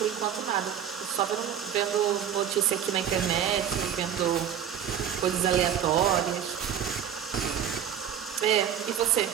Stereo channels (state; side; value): quieter; left; 9.2 dB